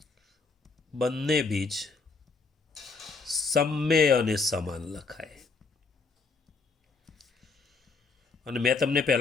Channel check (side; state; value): right; quieter; 4.3 dB